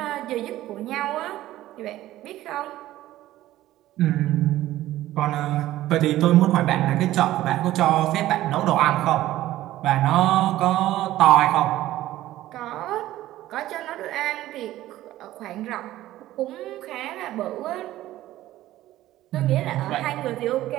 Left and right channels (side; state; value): left; quieter; 14.9 dB